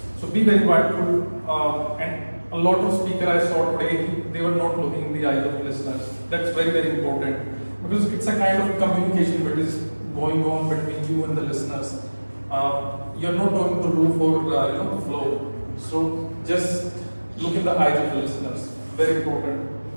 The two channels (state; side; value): inverted; both; correlation -1.00